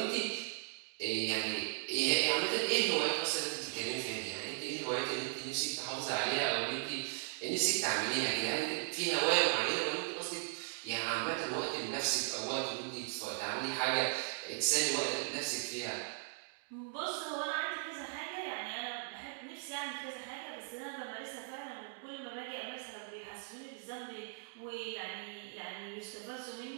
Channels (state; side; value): silent; left; digital silence